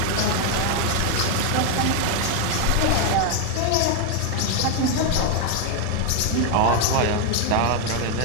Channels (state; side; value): different; both; correlation 0.01